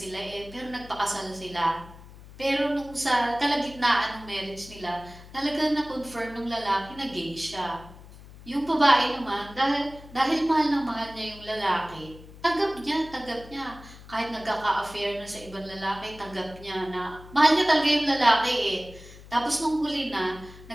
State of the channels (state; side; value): noise; left; hum, 18 dB below the sound